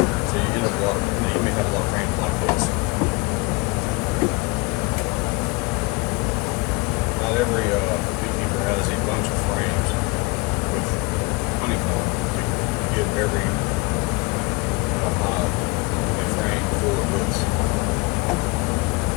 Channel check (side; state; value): right; quieter; 25.6 dB